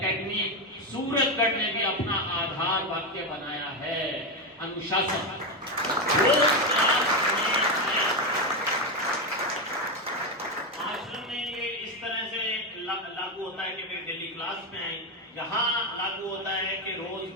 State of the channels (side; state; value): both; normal; correlation 0.10